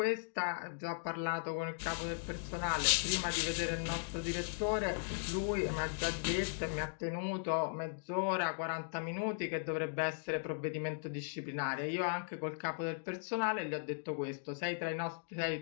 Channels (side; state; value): right; silent; digital silence